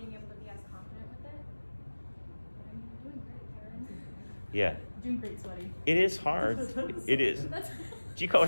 able to be as confident with it. But I mean, you're doing great, Karen. Yeah. Doing great, sweaty. It is hard. It is. Do you call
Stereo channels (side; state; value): both; inverted; correlation -1.00